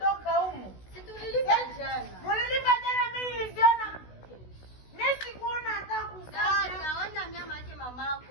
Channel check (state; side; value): late; right; 16 ms